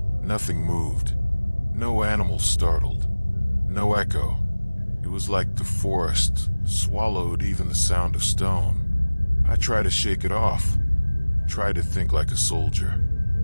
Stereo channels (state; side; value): inverted; both; correlation -1.00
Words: Nothing moved. No animal startled. No echo. It was like the forest swallowed even the sound of stone. I tried to shake it off, tried to think like a soldier.